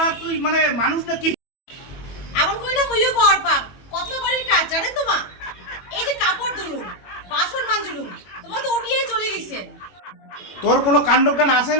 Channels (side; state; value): right; late; 21 ms